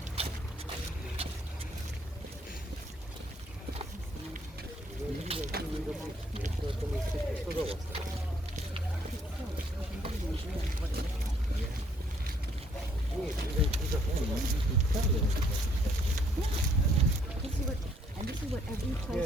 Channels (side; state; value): both; normal; correlation 0.66